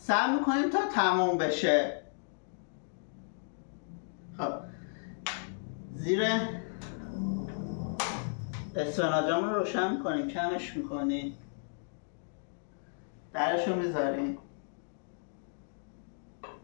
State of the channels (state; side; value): silent; right; digital silence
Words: میکنیم تا تموم بشه. خب زیر اسفناجمون رو روشن میکنیم، کمش میکنیم، درش رو